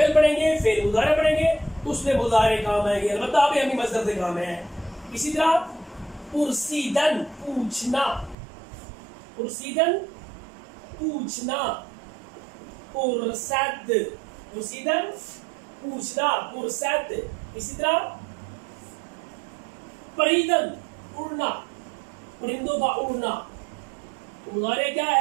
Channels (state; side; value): drops out; left; at 8.3 s